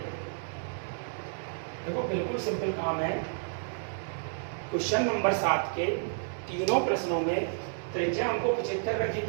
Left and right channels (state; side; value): silent; left; digital silence